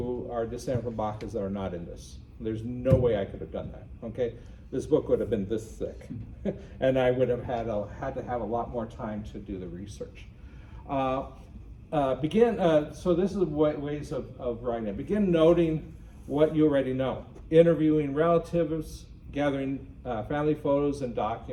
are descended from Bacas that are not in this. There's no way I could have done that, okay? This book would have been this thick, and I would have had to have a lot more time to do the research. So this is ways of writing it. Begin noting what you already know. Interviewing relatives, gathering family photos and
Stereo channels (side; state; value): both; identical; correlation 1.00